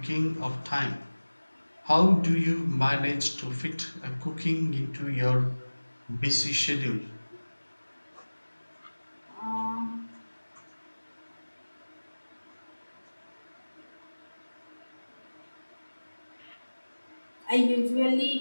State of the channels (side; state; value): both; inverted; correlation -1.00